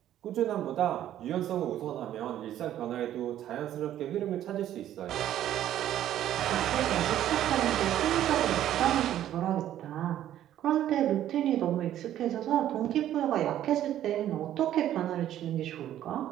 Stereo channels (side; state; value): left; quieter; 11.9 dB